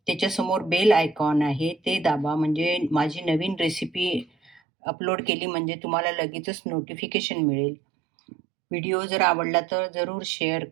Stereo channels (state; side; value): drops out; left; at 4.6 s